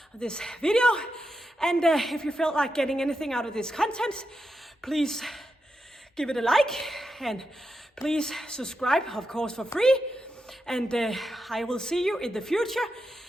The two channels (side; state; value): both; normal; correlation 0.87